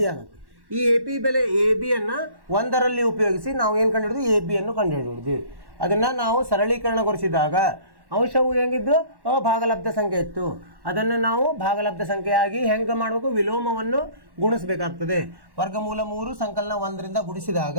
ಆಗುತ್ತೆ. ಈ ಎ ಪಿ ಬೆಲೆ ಎ ಬಿಯನ್ನು 1ರಲ್ಲಿ ಉಪಯೋಗಿಸಿ ನಾವು ಏನು ಕಂಡುಹಿಡಿದ್ವಿ? ಎ ಬಿಯನ್ನು ಕಂಡುಹಿಡಿದ್ವಿ. ಅದನ್ನು ನಾವು ಸರಳೀಕರಣಗೊಳಿಸಿದಾಗ ಅಂಶವು ಹೆಂಗಿದ್ದು? ಭಾಗಲಬ್ಧ ಸಂಖ್ಯೆ ಇತ್ತು. ಅದನ್ನು ನಾವು ಭಾಗಲಬ್ಧ ಸಂಖ್ಯೆಯಾಗಿ ಹೆಂಗೆ ಮಾಡಬೇಕು? ವಿಲೋಮವನ್ನು ಗುಣಿಸಬೇಕಾಗ್ತದೆ. ವರ್ಗಮೂಲ 3 ಸಂಕಲನ 1ರಿಂದ ಗುಣಿಸಿದಾಗ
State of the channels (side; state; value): left; late; 1.1 ms